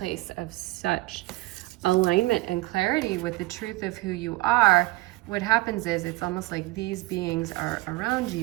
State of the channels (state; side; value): quieter; left; 20.7 dB